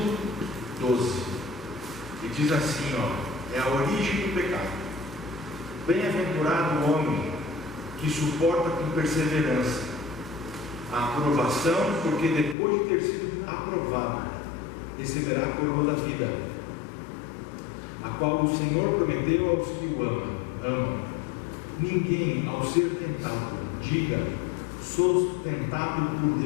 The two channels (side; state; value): right; drops out; at 12.6 s